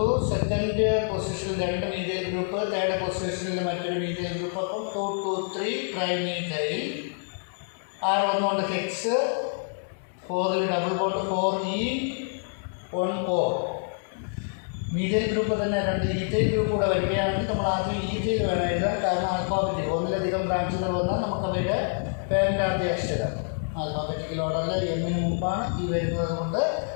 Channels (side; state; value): right; silent; 60 dB below the other